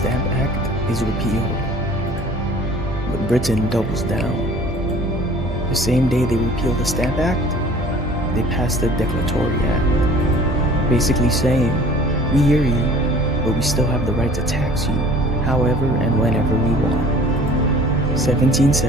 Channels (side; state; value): both; normal; correlation 0.49